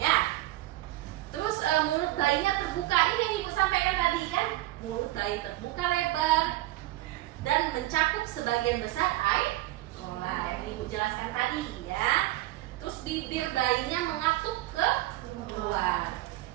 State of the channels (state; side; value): quieter; left; 17.4 dB